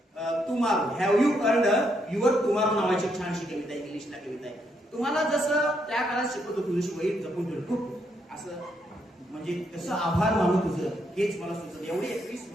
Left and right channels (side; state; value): both; normal; correlation 0.76